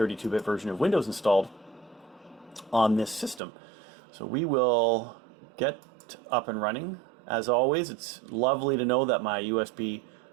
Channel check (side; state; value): left; drops out; at 3.4 s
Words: version of Windows installed on this system. So we will get up and running. As always, it's lovely to know that my USB